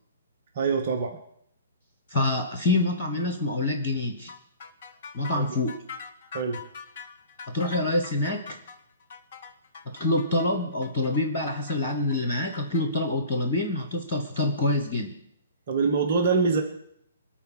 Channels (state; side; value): inverted; both; correlation -0.43